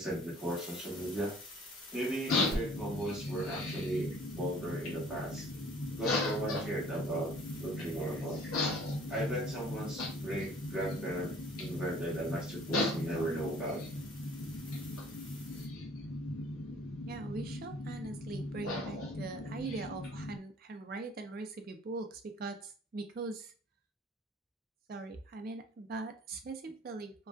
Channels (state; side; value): normal; both; correlation 0.53